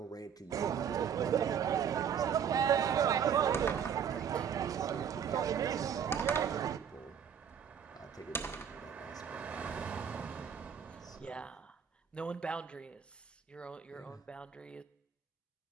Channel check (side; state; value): left; quieter; 7.9 dB